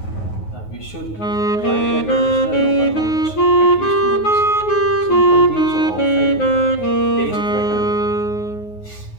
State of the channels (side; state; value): right; late; 9.4 ms